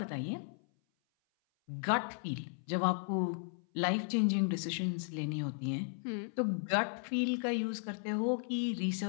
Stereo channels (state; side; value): silent; right; 54 dB below the other